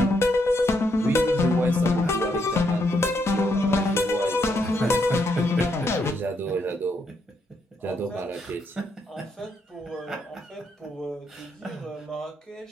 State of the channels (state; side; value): normal; both; correlation 0.77